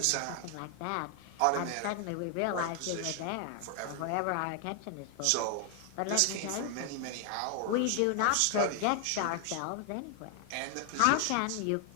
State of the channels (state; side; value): different; both; correlation 0.00